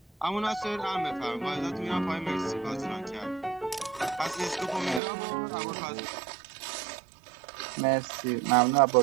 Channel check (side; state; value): left; drops out; at 5.0 s